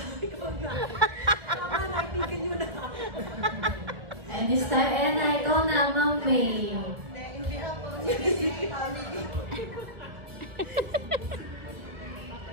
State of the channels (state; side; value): late; left; 1.7 ms